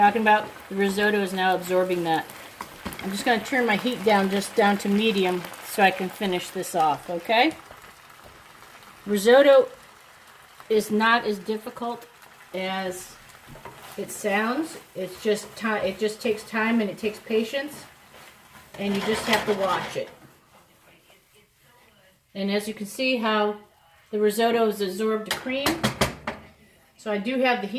about? The risotto is now absorbing that. I'm just going to turn my heat down just down to medium so I can finish this off, okay? Risotto is not as difficult as it sounds. It's just time. It just takes time and it takes patience, and you just have to watch it. And as you can see how the risotto has absorbed the cream. So I do have the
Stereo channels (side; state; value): both; identical; correlation 1.00